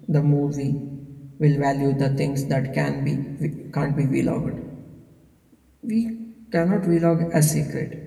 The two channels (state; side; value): identical; both; correlation 1.00